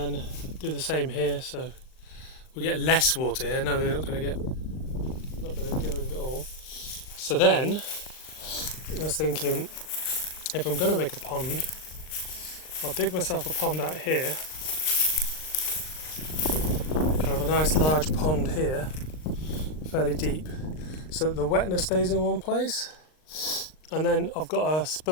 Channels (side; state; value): right; late; 39 ms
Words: do the same here, so we get less water here. No, we're not going to get rid of it all. So then I was thinking, if I'm going to make a pond, I'll dig myself a pond out here, kind of a nice large pond here, fairly deep, so that the wetness stays in one place. And then I've got a